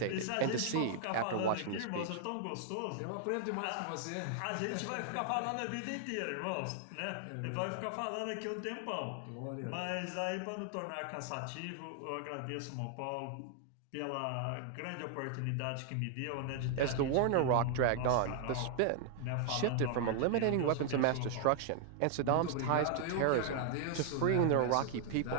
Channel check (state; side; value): different; both; correlation 0.00